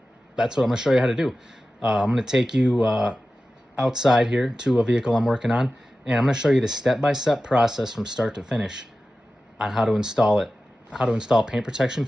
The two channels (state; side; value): normal; both; correlation 0.94